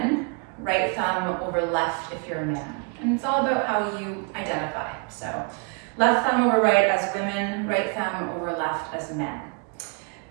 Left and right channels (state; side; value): quieter; left; 35.5 dB